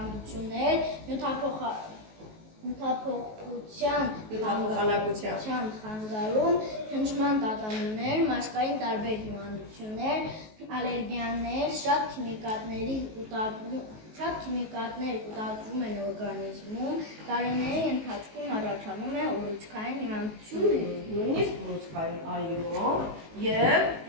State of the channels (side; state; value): left; late; 19 ms